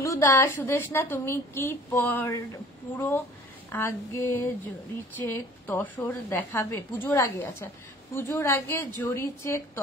দাস, সুদেশনা তুমি কি পুরো আগে জরি চেক তসর দেখাবে? পুজোর আগে, আচ্ছা পুজোর আগে জরি চেক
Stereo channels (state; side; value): normal; both; correlation 0.50